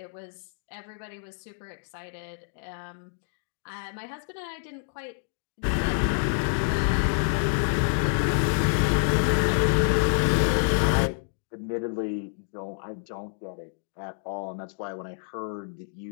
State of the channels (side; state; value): right; silent; digital silence